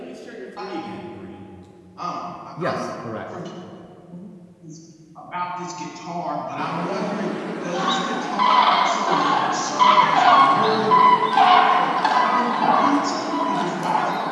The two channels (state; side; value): identical; both; correlation 1.00